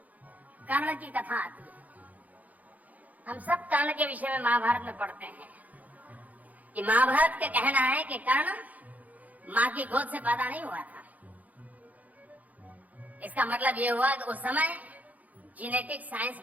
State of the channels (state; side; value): late; left; 0.077 ms